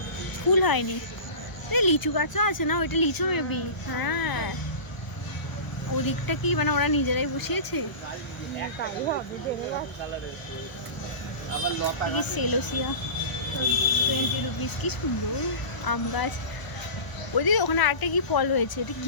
ফুল হয়নি, লিচু গাছও আছে না, ওইটা লিচু মেবি। হ্যাঁ, ওদিকটা কি মানে ওরা নিজেরাই বসিয়েছে। সেলোসিয়া 20 রুপিস, কি সুন্দর আম গাছ। ওইদিকে ওখানে আরেকটা কি ফল হয়েছে, এটা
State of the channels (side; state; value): right; late; 1.0 ms